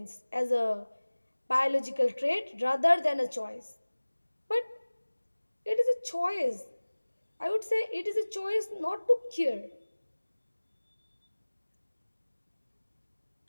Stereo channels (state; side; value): inverted; both; correlation -1.00